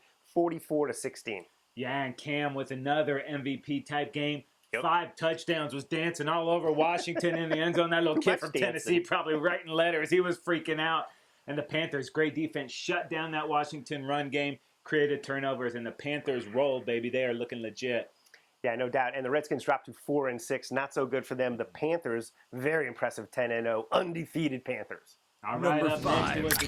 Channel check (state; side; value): identical; both; correlation 1.00